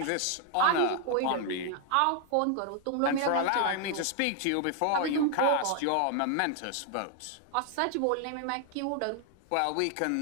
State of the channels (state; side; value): different; both; correlation 0.00